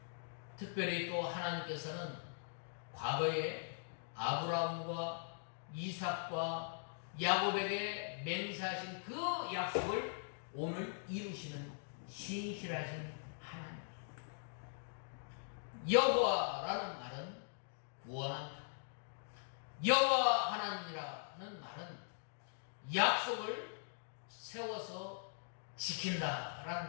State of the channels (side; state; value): right; silent; digital silence